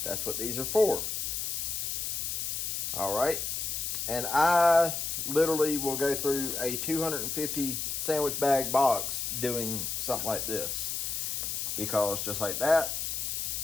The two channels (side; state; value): left; noise; hiss, 2 dB below the sound